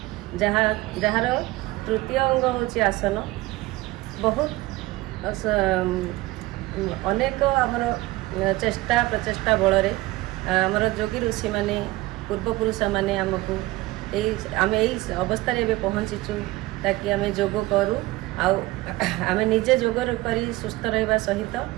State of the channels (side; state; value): left; quieter; 19.4 dB